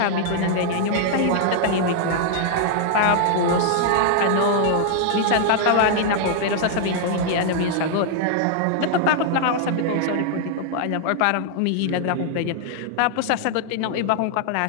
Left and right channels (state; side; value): different; both; correlation -0.01